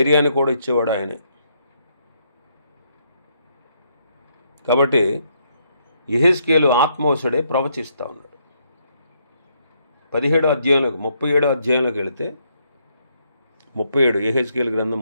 కూడా ఇచ్చేవాడు ఆయనే. కాబట్టి యెహెజ్కేలు ఆత్మవశుడే ప్రవచిస్తూ ఉన్నాడు. 37వ అధ్యాయంలోకి 37వ అధ్యాయంలోకి వెళితే 37 యెహెజ్కేలు గ్రంథం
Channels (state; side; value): inverted; both; correlation -0.74